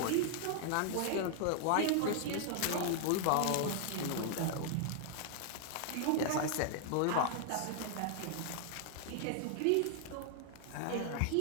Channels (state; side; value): different; both; correlation 0.00